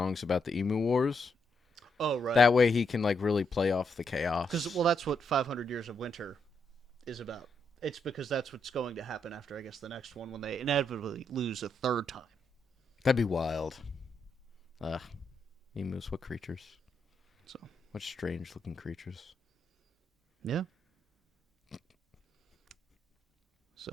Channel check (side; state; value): both; normal; correlation 0.79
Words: about the Emu Wars. Oh, right. That way he can like really play off the chaos. Because, well, that's what 500 Years of Winter is about. It's because that's what's going to happen after, I guess, the next one, when they inevitably lose a third time. That'd be wild. Emus, what creatures? So. What strange looking creatures. Yeah.